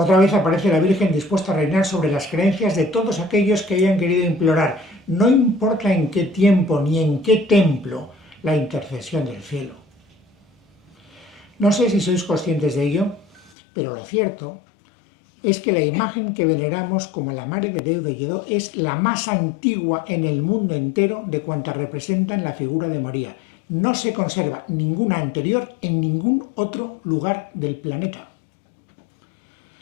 vez aparece la Virgen dispuesta a reinar sobre las creencias de todos aquellos que hayan querido implorar, no importa en qué tiempo ni en qué templo, la intercesión del cielo. No sé si sois conscientes de ello, pero lo cierto es que la imagen que veneramos como la Mare de Déu de Lledó es la más antigua en el mundo entero de cuantas representan la figura de María. No se conserva ninguna anterior en ningún otro lugar del planeta.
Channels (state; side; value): drops out; right; at 13.5 s